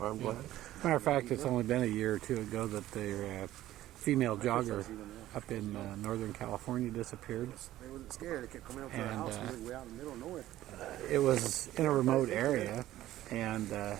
black. Matter of fact, it's only been a year or two ago that their female jogger up in Northern California disappeared. They wasn't scared. They kept coming up to our house. We were way out in the middle of nowhere. It was in a remote area, and a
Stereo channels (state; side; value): quieter; left; 14.4 dB